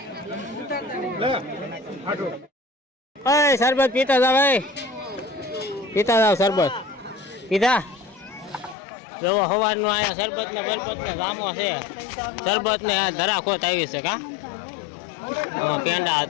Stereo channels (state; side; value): drops out; right; at 8.8 s